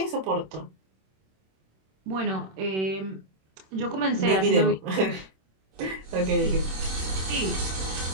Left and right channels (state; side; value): late; left; 26 ms